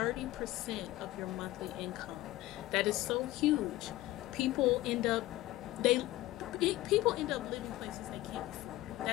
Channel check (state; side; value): quieter; right; 16.8 dB